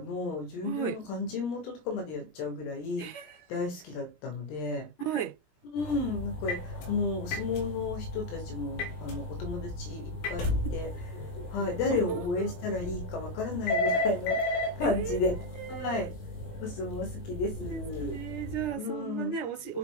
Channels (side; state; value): right; late; 17 ms